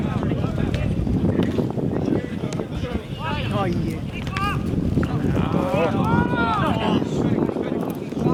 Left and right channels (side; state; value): both; identical; correlation 1.00